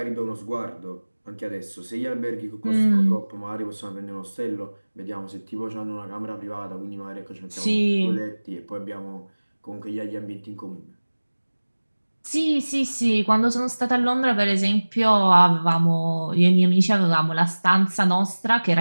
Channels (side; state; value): both; inverted; correlation -1.00